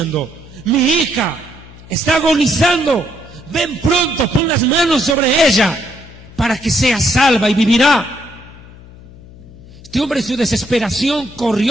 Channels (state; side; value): noise; left; hum, 20 dB below the sound